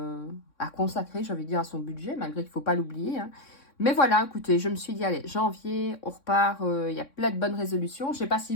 à consacrer, j'ai envie de dire, à son budget, malgré qu'il ne faut pas l'oublier. Hein. Mais voilà, écoutez, je me suis dit, allez, janvier, on repart. Il y a plein de bonnes résolutions. Je ne sais pas si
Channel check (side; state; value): right; late; 3.6 ms